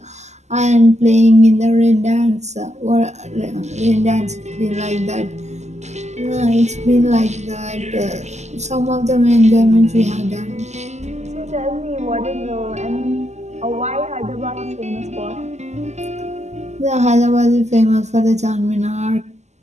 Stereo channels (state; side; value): late; left; 0.33 ms